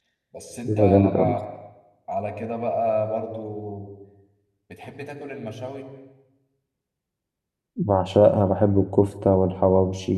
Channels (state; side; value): identical; both; correlation 1.00